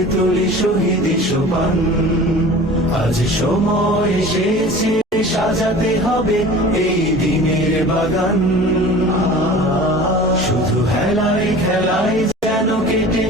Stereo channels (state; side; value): normal; both; correlation 0.41